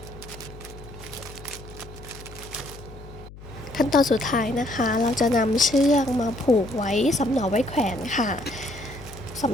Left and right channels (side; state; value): left; noise; hum, 16 dB below the sound